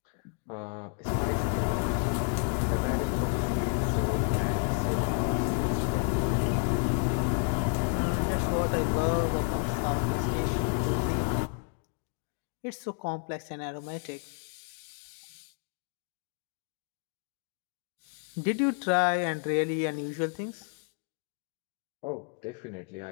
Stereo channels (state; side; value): quieter; right; 39.6 dB